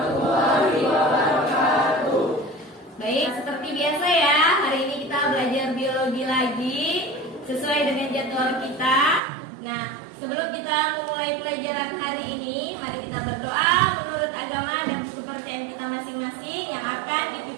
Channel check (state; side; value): drops out; left; at 9.2 s